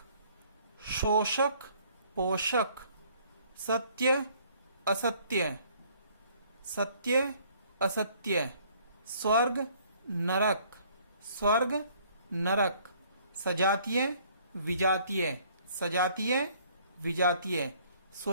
शोषक पोषक। सत्य असत्य, सत्य असत्य। स्वर्ग नरक, स्वर्ग नरक। सजातीय विजातीय, सजातीय विजातीय।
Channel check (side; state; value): both; inverted; correlation -0.60